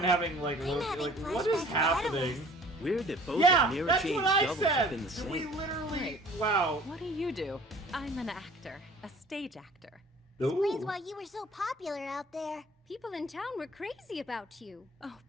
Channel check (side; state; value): both; normal; correlation 0.50